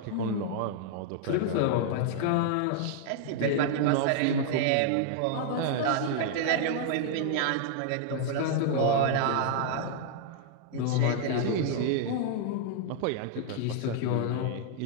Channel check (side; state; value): both; different; correlation -0.01